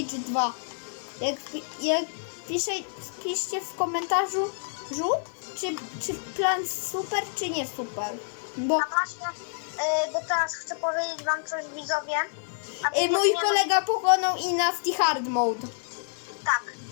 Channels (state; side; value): silent; right; 58 dB below the other